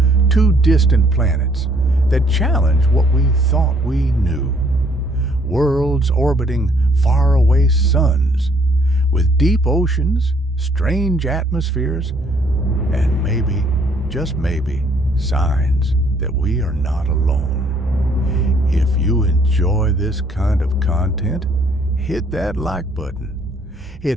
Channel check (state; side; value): normal; both; correlation 0.64